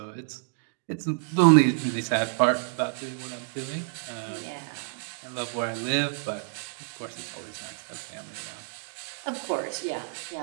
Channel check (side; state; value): left; silent; 59 dB below the other